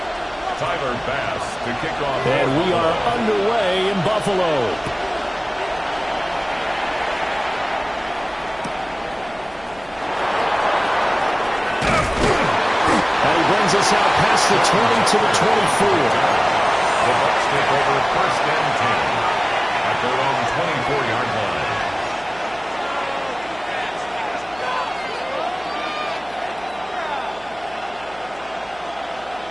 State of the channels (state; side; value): noise; right; hum, 24 dB below the sound